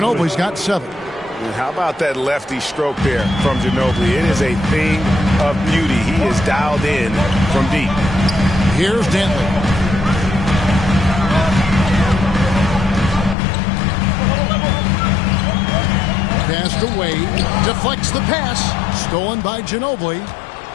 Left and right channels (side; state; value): right; drops out; at 13.4 s